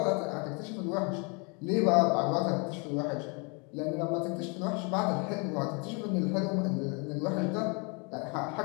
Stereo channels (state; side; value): quieter; right; 33.2 dB